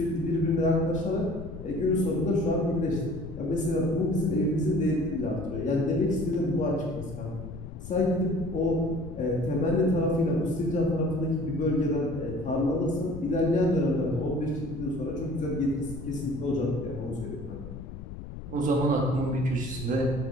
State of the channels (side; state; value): left; noise; rumble, 11 dB below the sound